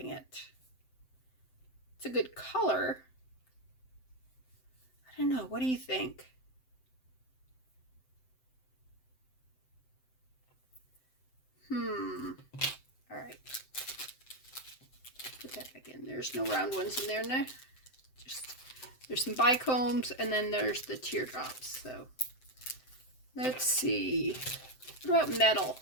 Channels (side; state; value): right; late; 7.7 ms